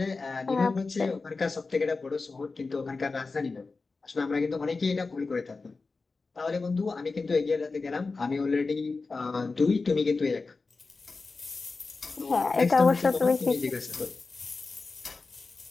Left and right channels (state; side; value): quieter; right; 4.0 dB